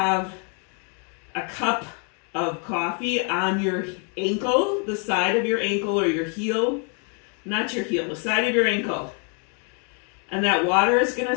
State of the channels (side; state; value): right; quieter; 39.5 dB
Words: a cup of coffee on your ankle, the side of your ankle or your heel, not your heel, the side of your ankle. And that water is going to